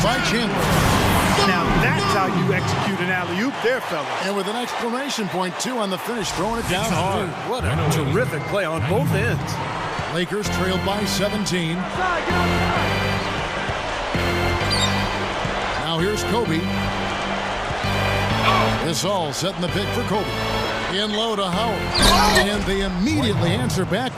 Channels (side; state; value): both; identical; correlation 1.00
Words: by Chandler. Now that's how you execute an alley-oop there, fellas. And with an exclamation point, too, on the finish, throwing it down hard. What a terrific play on both ends. Lakers trailed by 17. Now here's Kobe. This all setting the pick for Kobe. In low to Howard. And they immediately answer back